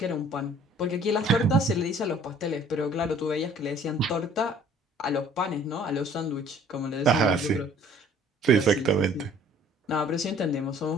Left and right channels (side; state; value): both; normal; correlation 0.54